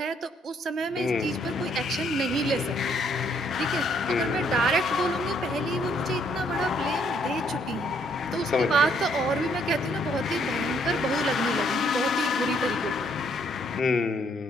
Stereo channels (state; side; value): normal; both; correlation 0.68